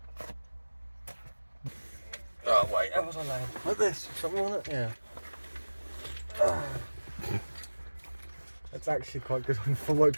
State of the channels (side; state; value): both; inverted; correlation -1.00